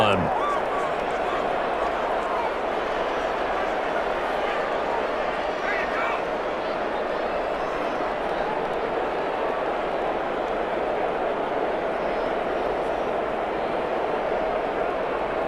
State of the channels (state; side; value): identical; both; correlation 1.00